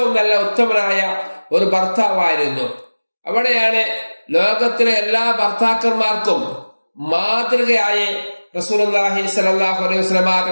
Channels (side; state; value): both; inverted; correlation -1.00